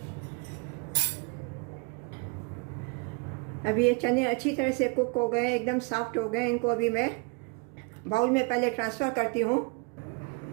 अभी ये चने अच्छी तरह से कुक हो गए, एकदम सॉफ्ट हो गए। इनको अभी मैं बाउल में पहले ट्रांसफ़र करती हूँ।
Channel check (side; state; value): left; quieter; 30.7 dB